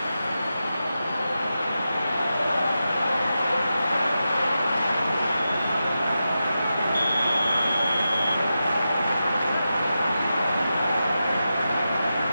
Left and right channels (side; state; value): both; inverted; correlation -0.90